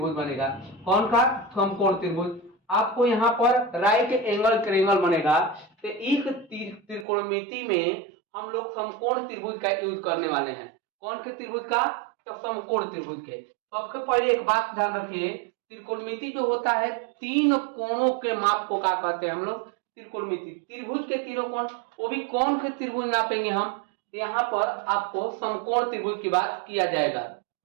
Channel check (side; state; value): left; drops out; at 7.1 s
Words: बनेगा। कौन सा, समकोण त्रिभुज। आपको यहाँ पर राइट एंगल ट्रायंगल बनेगा। तो इस त्रिकोणमिति में हम लोग समकोण त्रिभुज का यूज करने वाले हैं। कौन से त्रिभुज का, तो समकोण त्रिभुज के। सबसे पहले एक बात ध्यान रखिए, त्रिकोणमिति जो होता है 3 कोणों के माप को क्या कहते हैं हम लोग, त्रिकोणमिति। त्रिभुज के तीनों कोण, वो भी कौन से त्रिभुज नापेंगे हम, यहाँ पर आपको समकोण त्रिभुज की बात किया जाएगा।